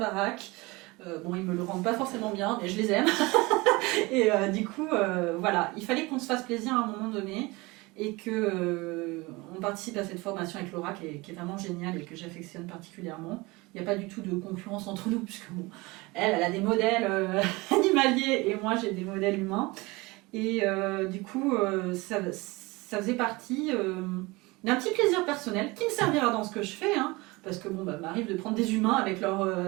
Ils me le rendent pas forcément bien, mais je les aime. Et du coup, il fallait qu'on se fasse plaisir à un moment donné et qu'on participe à cette formation avec Laura qui est vraiment géniale et que j'affectionne particulièrement. Il n'y a pas du tout de concurrence entre nous, puisque elle a des modèles animaliers et moi j'ai des modèles humains. Et du coup, ça faisait partie d'un petit plaisir personnel qui me servira dans ce que je fais, parce que m'arrive de prendre des humains avec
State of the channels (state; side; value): quieter; left; 23.4 dB